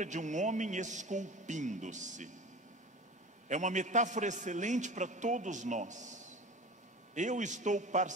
de um homem esculpindo-se. É uma metáfora excelente para todos nós. Eu estou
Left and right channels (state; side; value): normal; both; correlation 0.35